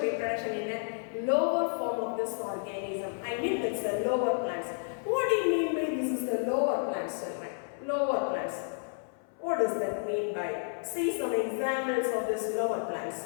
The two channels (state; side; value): silent; right; 56 dB below the other